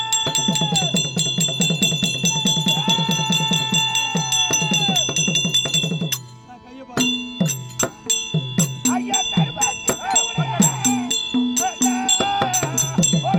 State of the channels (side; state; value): both; identical; correlation 1.00